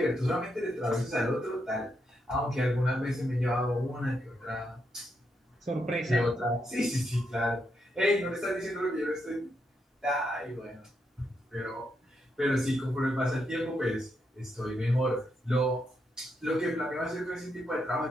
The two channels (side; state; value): both; normal; correlation 0.81